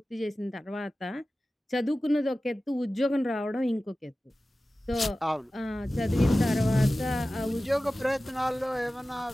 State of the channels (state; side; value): normal; both; correlation 0.96